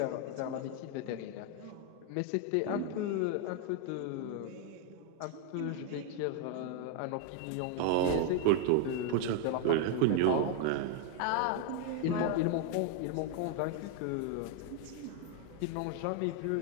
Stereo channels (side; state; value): both; different; correlation 0.01